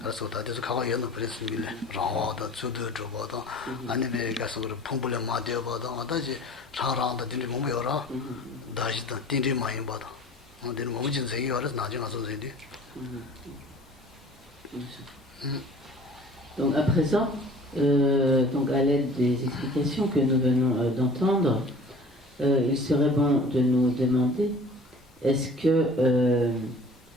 Donc à présent, donc à l'aide des explications que nous venons d'entendre, il serait bon de nous demander est-ce que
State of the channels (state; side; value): normal; both; correlation 0.46